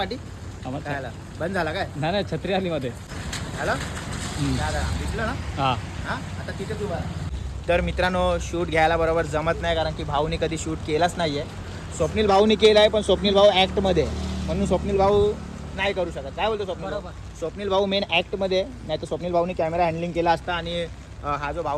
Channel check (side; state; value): both; identical; correlation 1.00